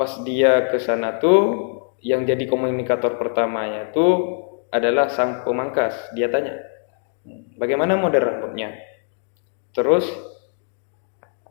dia ke sana tuh yang jadi komunikator pertamanya tuh adalah sang pemangkas. Dia tanya, bagaimana model rambutnya? Terus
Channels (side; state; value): right; silent; digital silence